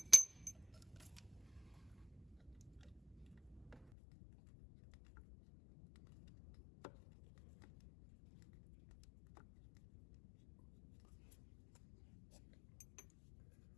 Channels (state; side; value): drops out; right; at 3.9 s